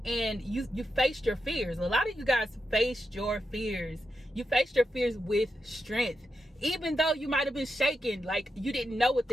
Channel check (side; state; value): both; normal; correlation 0.86